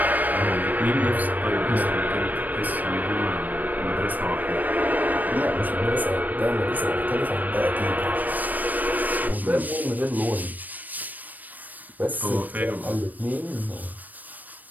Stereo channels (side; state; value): left; late; 0.084 ms